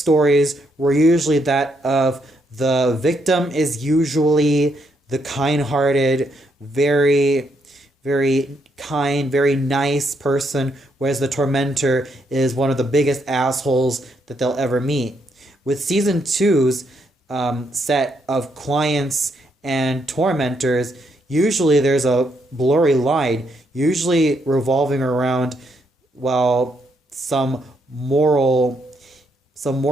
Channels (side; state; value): both; normal; correlation 0.76